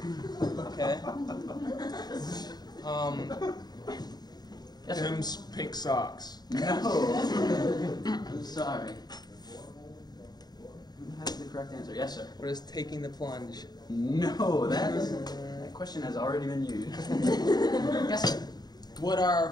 Okay. Yes, sir. Tim's pink socks. No. I'm sorry. Who has the correct answer? Yes, sir. What is taking the plunge? No, that question has already been used. Yes, sir. What are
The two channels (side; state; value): right; late; 0.20 ms